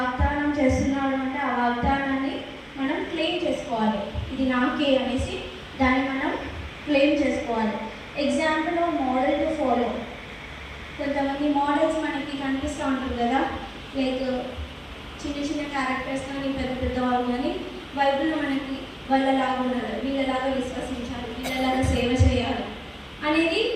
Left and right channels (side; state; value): both; identical; correlation 1.00